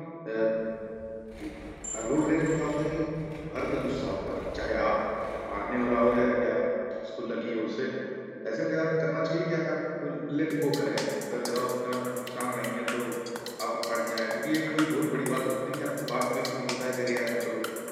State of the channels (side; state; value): both; identical; correlation 1.00